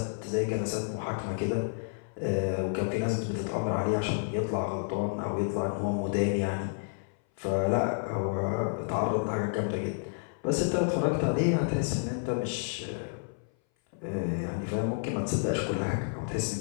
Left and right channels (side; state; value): right; silent; 58 dB below the other